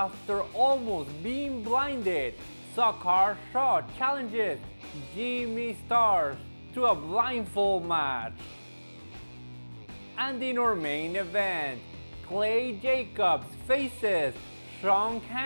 almost being blinded, Zakar Shah challenges Jimmy Starz to a blindfold match. And in our main event, Clay Jacobs faces Shaun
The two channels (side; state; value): both; inverted; correlation -1.00